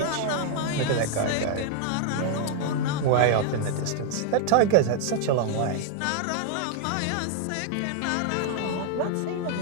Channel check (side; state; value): both; different; correlation 0.00